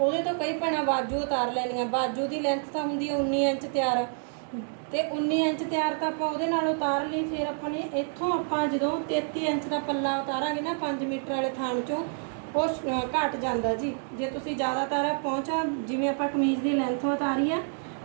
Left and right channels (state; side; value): silent; left; 59 dB below the other